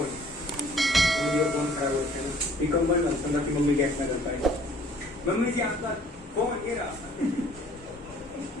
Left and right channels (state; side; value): normal; both; correlation 0.55